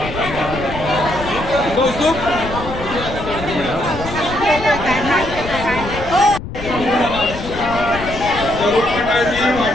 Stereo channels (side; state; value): left; noise; rumble, 10 dB below the sound